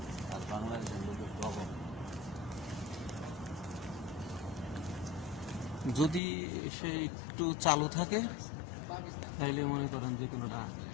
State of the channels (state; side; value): drops out; right; at 6.2 s